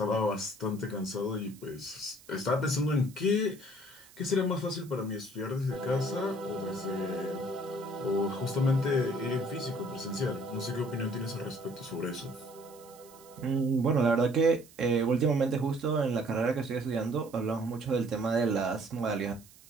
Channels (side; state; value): right; noise; hiss, 23 dB below the sound